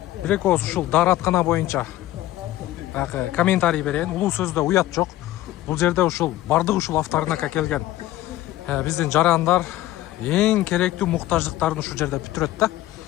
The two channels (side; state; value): right; quieter; 15.4 dB